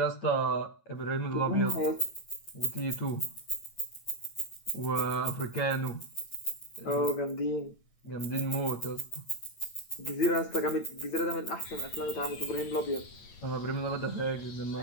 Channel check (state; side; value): late; right; 8.9 ms